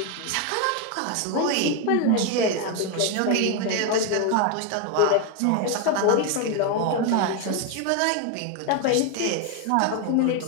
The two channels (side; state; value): both; different; correlation 0.01